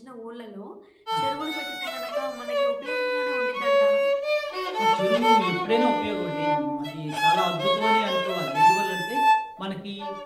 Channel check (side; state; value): both; identical; correlation 1.00